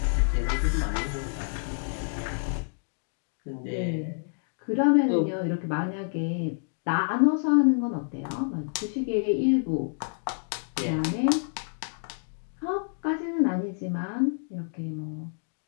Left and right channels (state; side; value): silent; right; digital silence